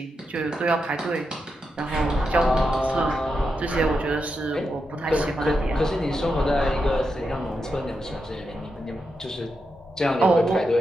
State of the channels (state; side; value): normal; both; correlation 0.86